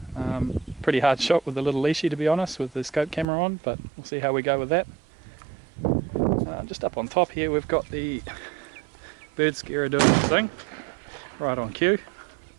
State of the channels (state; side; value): drops out; left; at 3.2 s